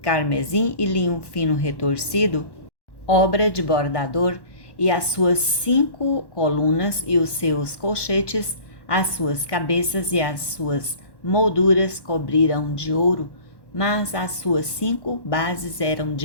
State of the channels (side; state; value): right; late; 1.1 ms